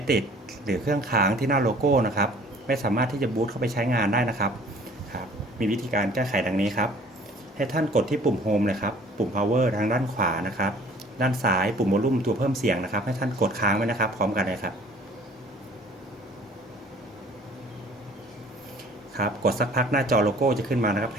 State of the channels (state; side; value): normal; both; correlation 0.52